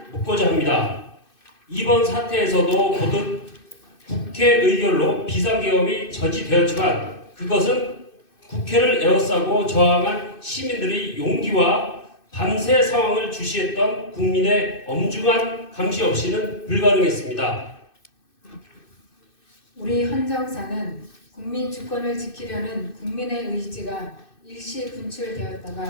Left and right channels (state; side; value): late; right; 2.6 ms